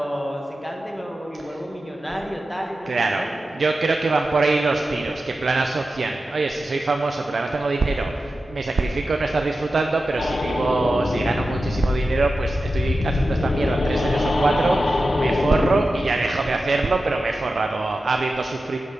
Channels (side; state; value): both; normal; correlation 0.93